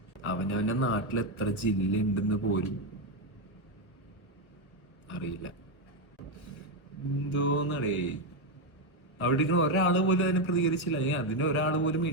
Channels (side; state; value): right; late; 1.1 ms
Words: അവനവന്റെ നാട്ടിൽ എത്ര ജില്ല ഉണ്ടെന്ന് പോലും അറിയില്ല. എന്തോന്നടേ, അവിടെ ഒരാള് പോലും അതിനെ പ്രതികരിച്ചില്ല. അതിന് ഒരാള് പോലും